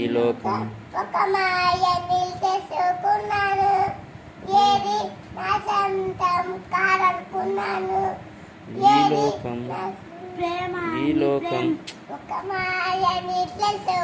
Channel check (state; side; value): identical; both; correlation 1.00